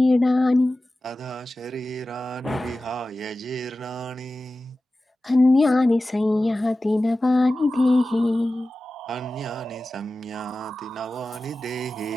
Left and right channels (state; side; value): normal; both; correlation 0.95